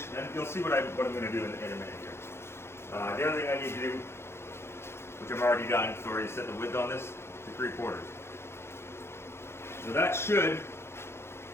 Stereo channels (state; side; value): late; right; 0.12 ms